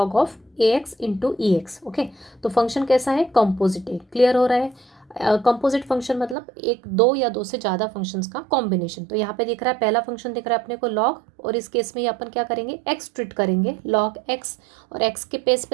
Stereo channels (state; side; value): drops out; left; at 6.4 s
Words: of a x into e x. Okay, तो फंक्शन कैसा है? कॉम्पोजिट है। क्लियर हो रहा है? कंपोजिट फंक्शन मतलब एक दो या दो से ज़्यादा फंक्शंस का कॉम्बिनेशन। तो यहाँ पे दिख रहा है पहला फंक्शन दिख रहा है अपने को लॉग, और इस केस में ये अपन क्या करेंगे? एक्स ट्रीट करेंगे, लॉग एक्स। और एक्स के पेस